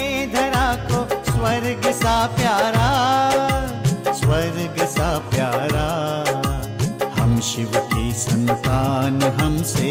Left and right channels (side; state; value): both; identical; correlation 1.00